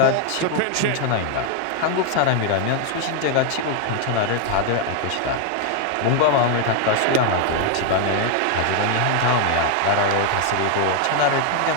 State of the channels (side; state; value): both; different; correlation 0.00